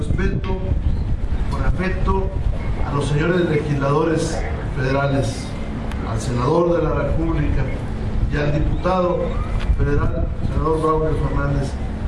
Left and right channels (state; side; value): identical; both; correlation 1.00